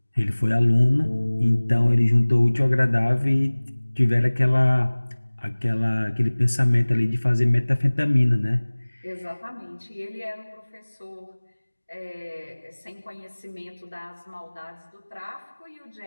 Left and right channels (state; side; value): inverted; both; correlation -1.00